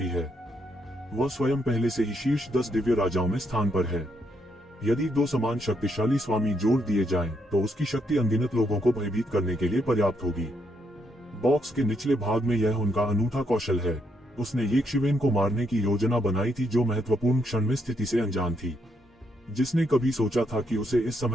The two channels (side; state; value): both; normal; correlation 0.76